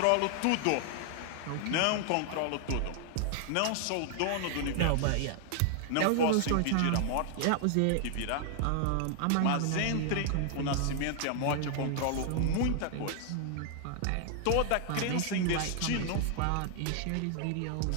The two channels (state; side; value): different; both; correlation 0.00